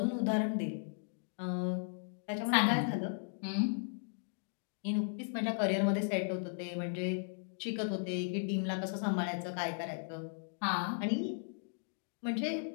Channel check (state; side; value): silent; right; digital silence